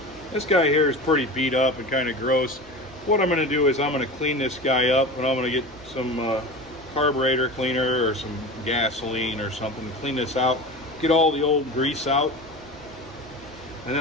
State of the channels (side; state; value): left; noise; rumble, 27 dB below the sound